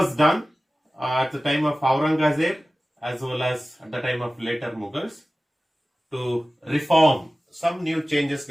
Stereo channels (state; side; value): normal; both; correlation 0.96